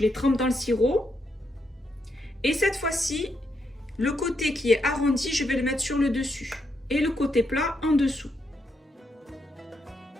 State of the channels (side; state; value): both; normal; correlation 0.80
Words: les trempe dans le sirop. Et cette fois-ci, le côté qui est arrondi, je vais le mettre sur le dessus. Et le côté plat en dessous.